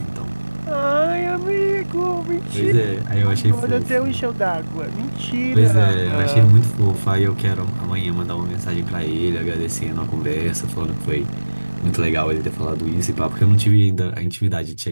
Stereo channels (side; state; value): both; inverted; correlation -1.00